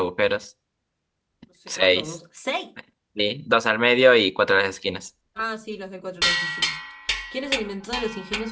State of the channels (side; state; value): both; identical; correlation 1.00